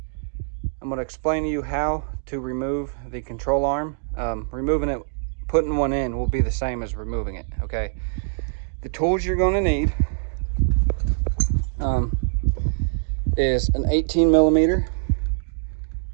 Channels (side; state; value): left; silent; digital silence